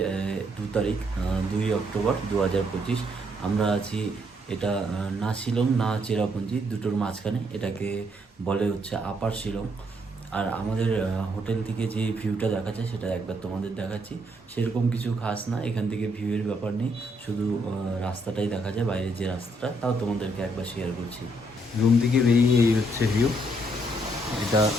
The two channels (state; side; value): normal; both; correlation 0.72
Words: 2 তারিখ, 2 অক্টোবর 2025। আমরা আছি এটা না শিলং না চেরাপুঞ্জি, দুটোর মাঝখানে। এটাকে বলে হচ্ছে আপার শিলং। আর আমাদের হোটেল থেকে যে ভিউটা দেখা যায় সেটা একবার তোমাদের দেখাচ্ছি। সেরকম কিছু খাস না, এখান থেকে ভিউয়ের ব্যাপার নেই, শুধু রাস্তাটাই দেখা যায়, বাইরের যে রাস্তাটা, তাও তোমাদেরকে একবার শেয়ার করছি। রুম থেকে বেরিয়ে এই হচ্ছে ভিউ।